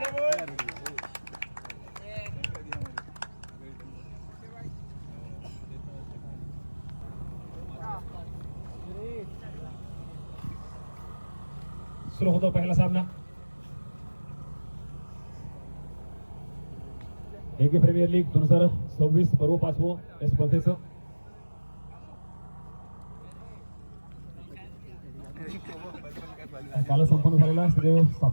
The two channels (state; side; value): inverted; both; correlation -1.00